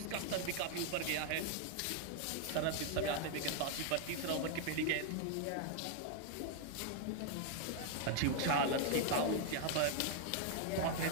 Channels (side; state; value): both; different; correlation 0.00